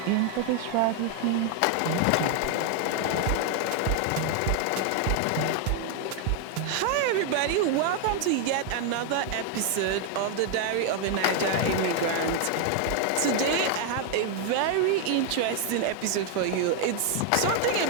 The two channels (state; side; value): different; both; correlation 0.01